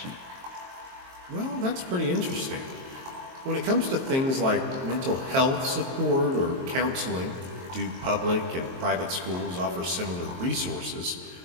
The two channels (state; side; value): late; left; 22 ms